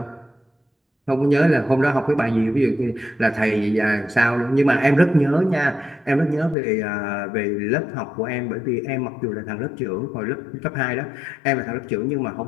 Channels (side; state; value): right; drops out; at 6.6 s